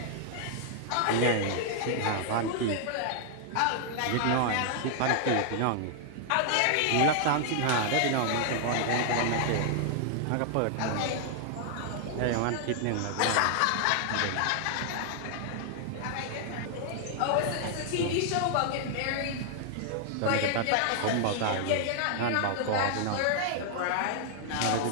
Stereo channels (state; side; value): different; both; correlation 0.00